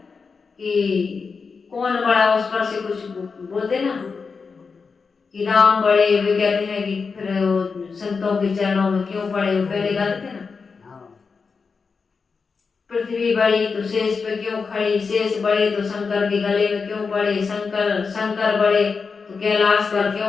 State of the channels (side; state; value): right; quieter; 5.0 dB